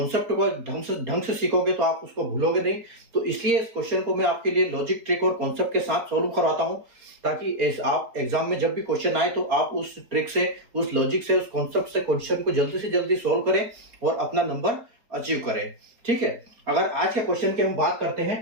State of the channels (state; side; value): late; left; 4.3 ms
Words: को ढंग से सीखोगे तो आप उसको भूलोगे नहीं। तो इसलिए इस क्वेश्चन को मैं आपके लिए लॉजिक, ट्रिक और कॉन्सेप्ट के साथ सोल्व करवाता हूं, ताकि आप एग्जाम में जब भी क्वेश्चन आए तो आप उस ट्रिक से, उस लॉजिक से, उस कॉन्सेप्ट से क्वेश्चन को जल्दी से जल्दी सोल्व करें और अपना नंबर अचीव करें। ठीक है, अगर आज के क्वेश्चन की हम बात करते